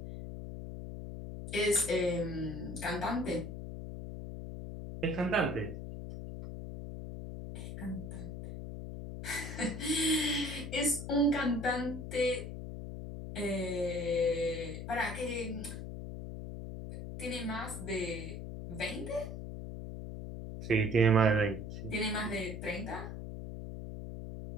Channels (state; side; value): noise; left; hum, 7 dB below the sound